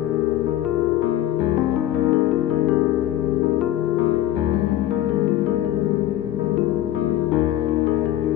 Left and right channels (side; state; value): right; quieter; 13.2 dB